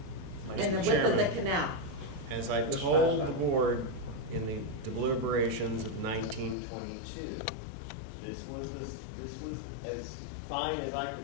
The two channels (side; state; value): right; drops out; at 6.6 s